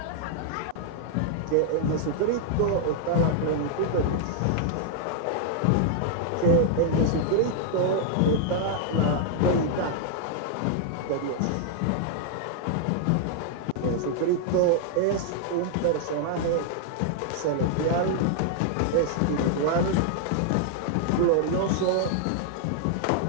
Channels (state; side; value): different; both; correlation -0.01